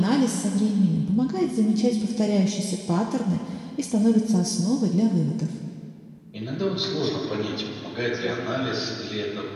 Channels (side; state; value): both; identical; correlation 1.00